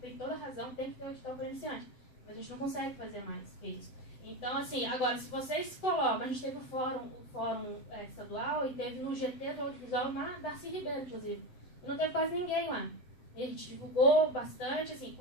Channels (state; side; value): late; right; 7.8 ms